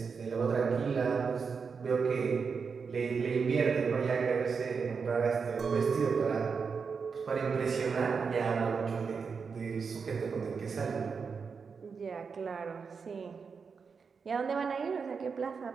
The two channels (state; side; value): quieter; left; 5.5 dB